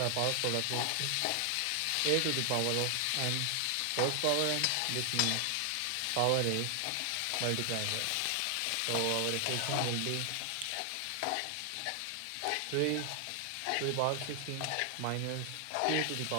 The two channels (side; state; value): both; different; correlation 0.00